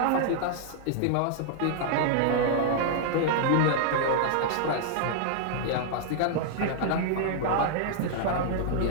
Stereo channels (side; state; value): both; different; correlation -0.01